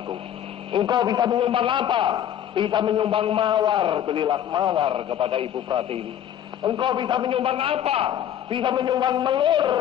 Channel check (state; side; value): quieter; right; 10.4 dB